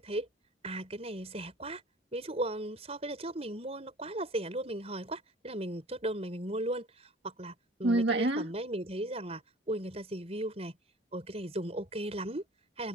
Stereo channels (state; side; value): normal; both; correlation 0.45